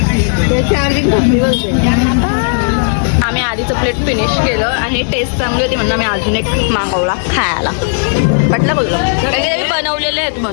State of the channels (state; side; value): silent; right; digital silence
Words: आम्ही आधीचं प्लेट फिनिश केलं आणि टेस्ट चांगली होती म्हणून आम्ही अजून एक मागवला खायला. म्हटलं बोललो कारण की ते बनवलेले आहेत